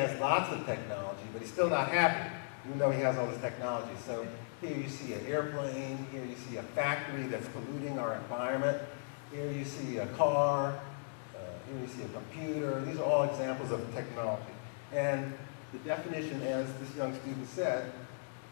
lots of technology, but he's still not happy, even though he has all this technology. So here you see an airplane, here you see a factory that's polluting our environment, here you see a car, here you see a computer. These are all examples of technology. And the definition, as this young student said,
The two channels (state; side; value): silent; right; digital silence